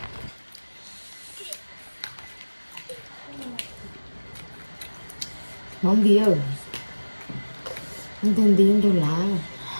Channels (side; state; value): both; inverted; correlation -1.00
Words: Món bia không tên tiếng đâu là